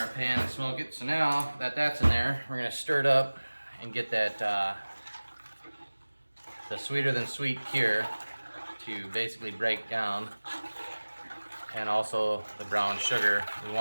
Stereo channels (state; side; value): inverted; both; correlation -1.00